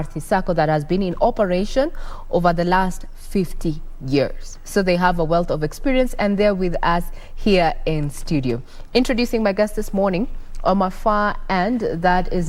Sacco that has been in operation over the last 50 years. So they have a wealth of experience, and they're with us here in studio. Introducing my guest this morning, on my far end, that is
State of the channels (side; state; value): both; identical; correlation 1.00